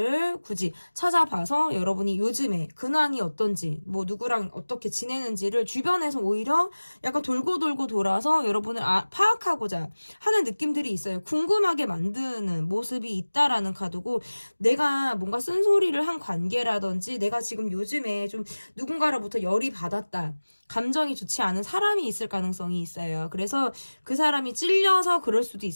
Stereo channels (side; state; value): both; inverted; correlation -1.00